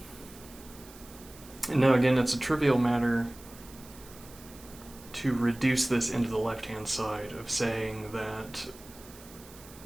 And now again, it's a trivial matter to reduce this into the left-hand side of saying that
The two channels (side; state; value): right; noise; hiss, 20 dB below the sound